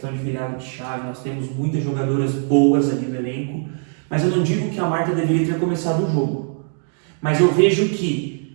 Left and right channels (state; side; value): silent; left; 60 dB below the other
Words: de virada de chave, nós temos muitas jogadoras boas ali no elenco, mas eu não digo que a Marta deveria ter começado o jogo. Mas eu vejo